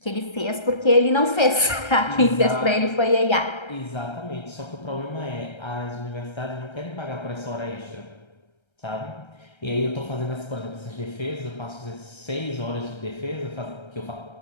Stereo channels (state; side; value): late; right; 1.3 ms